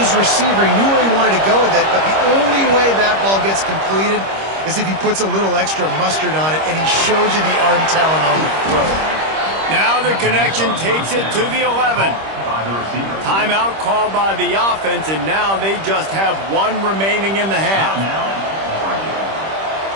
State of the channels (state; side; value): late; left; 26 ms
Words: receiver. He knew where he wanted to go with it, but the only way that ball gets completed is if he puts a little extra mustard on it, and he shows you the arm talent on the throw. Now the connection takes it to the 11. Timeout called by the offense, and now they just have one remaining in the half.